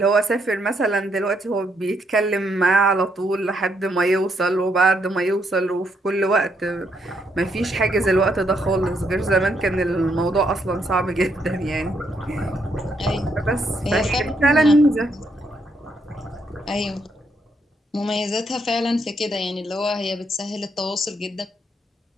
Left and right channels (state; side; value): normal; both; correlation 0.75